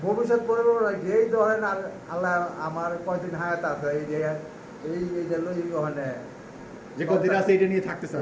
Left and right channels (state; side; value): identical; both; correlation 1.00